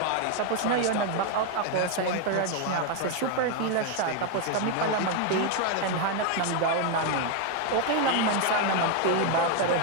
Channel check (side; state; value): both; different; correlation 0.01